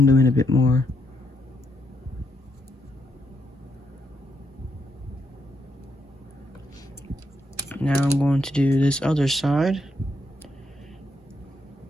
in a bit more. Now I'm going to do this other side.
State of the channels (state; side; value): normal; both; correlation 0.78